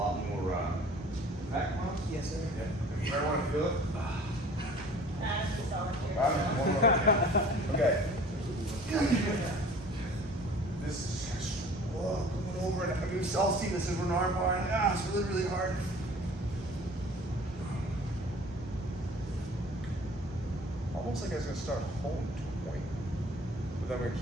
more back mounts. Yes, sir. Yeah. You might want to feel it. Okay. This is going over it. I mean, we've all seen this in an arm bar. It's really, really hard. Almost like I was going to start home to a point, but then I'm going to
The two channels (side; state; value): both; normal; correlation 0.48